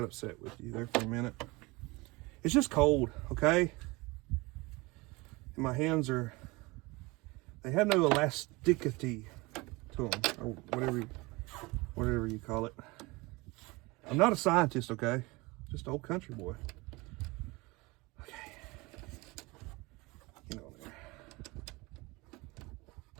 upset with you there for a minute. It's just cold, okay? And my hands they have no elasticity to them, or whatever you call it. I'm not a scientist, okay? Just an old country boy. Okay. Get on there.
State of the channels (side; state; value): left; quieter; 23.9 dB